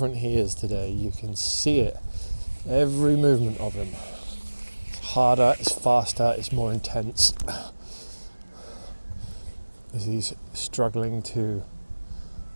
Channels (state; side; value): inverted; both; correlation -1.00